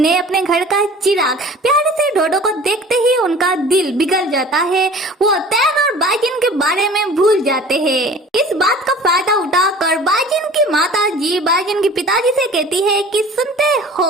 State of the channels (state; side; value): normal; both; correlation 0.45